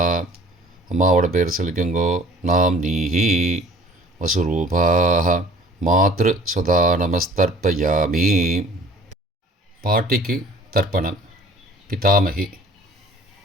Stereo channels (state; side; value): normal; both; correlation 0.49